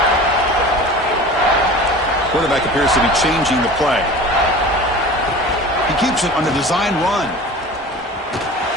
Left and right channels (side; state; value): both; normal; correlation 0.38